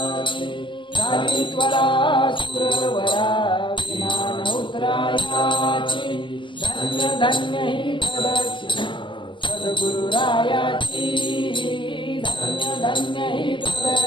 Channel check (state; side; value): late; right; 0.24 ms